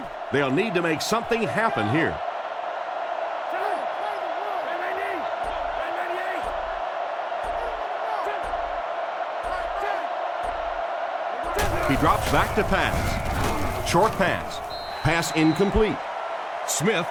They'll need to make something happen here. He drops back to pass. Short pass. Pass incomplete. Smith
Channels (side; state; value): both; identical; correlation 1.00